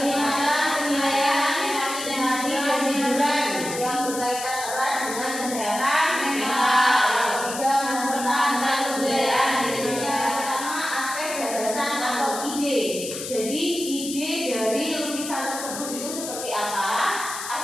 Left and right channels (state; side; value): noise; left; hiss, 8 dB below the sound